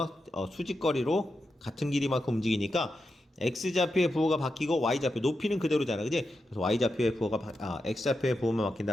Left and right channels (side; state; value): both; normal; correlation 0.88